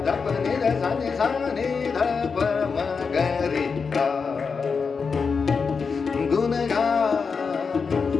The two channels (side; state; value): right; quieter; 5.3 dB